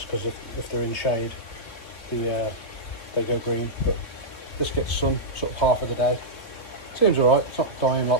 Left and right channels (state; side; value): late; right; 3.2 ms